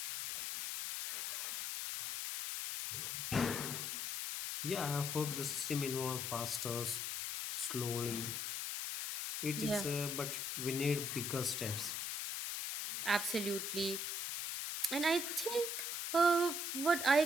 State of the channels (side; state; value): left; noise; hiss, 2 dB below the sound